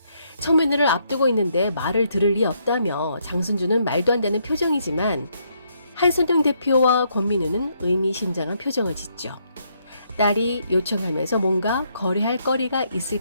청문회를 앞두고 있는데 말을 들을 리 없다며 장순주는 말도 안 되는 표정이지만 한선영 대표와 권민우는 의미심장한 표정을 짓죠. 딸이 요청하면서 뭔가 거래할 거리가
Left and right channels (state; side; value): inverted; both; correlation -0.74